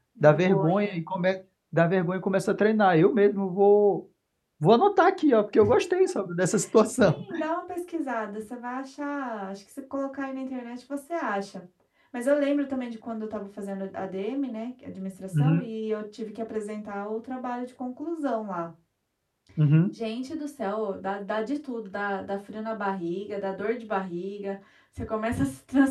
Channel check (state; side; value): identical; both; correlation 1.00